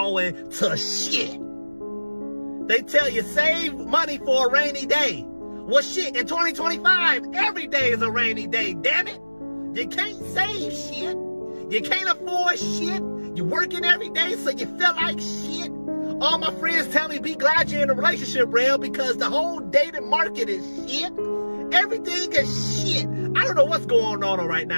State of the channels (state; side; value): inverted; both; correlation -1.00